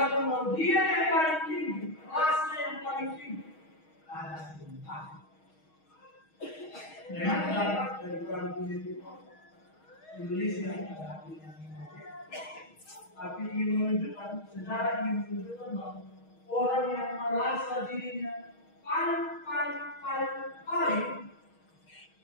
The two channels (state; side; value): late; right; 6.3 ms